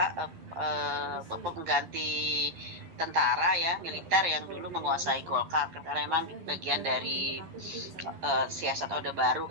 pengganti tentara ya, militer yang dulu menguasai Golkar karena memang bagian dari siasat Orde Baru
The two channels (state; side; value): late; left; 12 ms